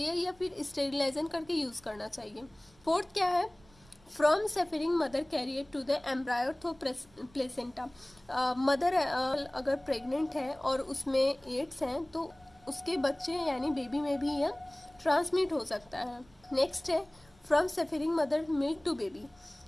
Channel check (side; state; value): right; noise; rumble, 28 dB below the sound